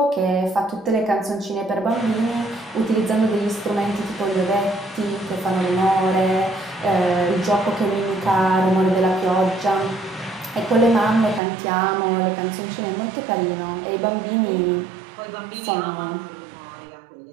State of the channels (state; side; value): drops out; left; at 11.4 s